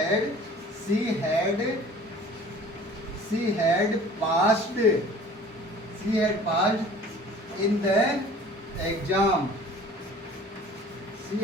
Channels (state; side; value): normal; both; correlation 0.47